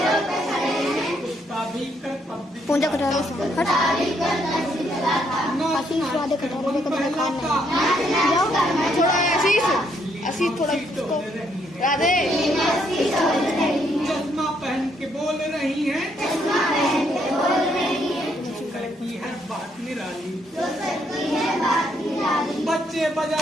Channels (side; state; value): both; normal; correlation 0.73